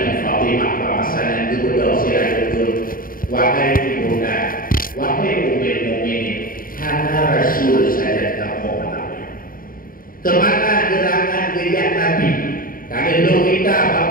Fatimah bahasanya kedua sirajul. Wahai ibunda, wahai Ummul Mukminin, hanya Rasul saja kamu mengenali. Kemana gerangan gejak Nabi? Kalau kita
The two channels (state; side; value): late; right; 0.41 ms